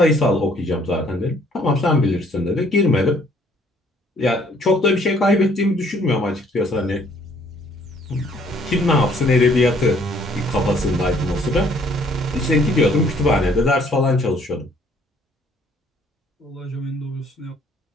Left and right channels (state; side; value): normal; both; correlation 0.62